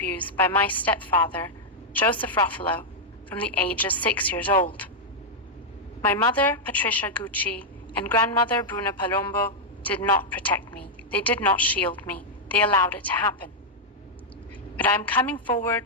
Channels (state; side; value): normal; both; correlation -0.04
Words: by my stepfather, Joseph Ruffalo, from the age of 6 years old. My mother, Patricia Gucci, and grandmother, Bruna Palombo, did not protect me. They did not shield me. They allowed it to happen. But I'm coming